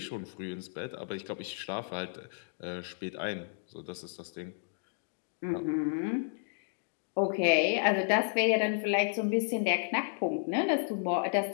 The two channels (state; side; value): silent; right; digital silence